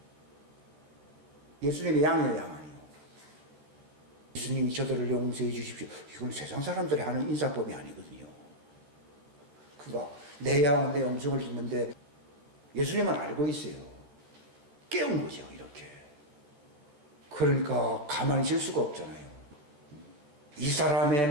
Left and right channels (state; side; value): late; left; 14 ms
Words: 예수님의 양이에요, 양 아니에요. 예수님이 저들을 용서해 주십시오. 이건 세상 사람들이 하는 인사법이 아니거든요. 그거 내 양은 내 음성을 듣는데 예수님은 알고 있어요. 깨운 거죠, 이렇게. 그러니까 가만히 있을 수가 없잖아요. 이 사람의